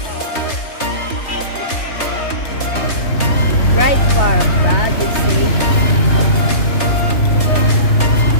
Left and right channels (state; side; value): late; right; 3.3 ms